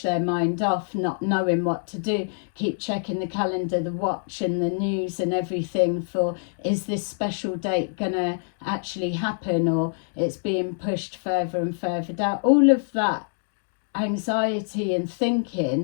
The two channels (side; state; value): right; silent; digital silence